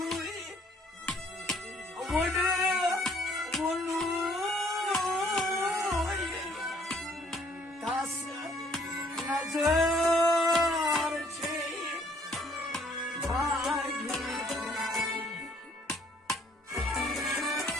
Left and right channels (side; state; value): both; normal; correlation 0.63